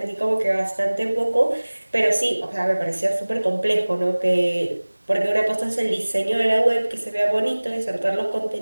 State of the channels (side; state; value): both; inverted; correlation -1.00